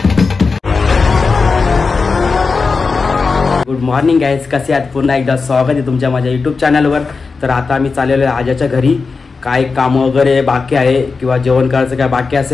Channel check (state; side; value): quieter; right; 4.5 dB